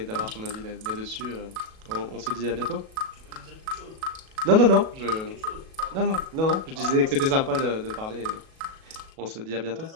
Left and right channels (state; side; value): late; left; 37 ms